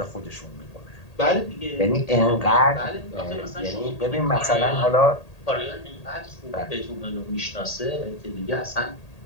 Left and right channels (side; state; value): right; late; 1.8 ms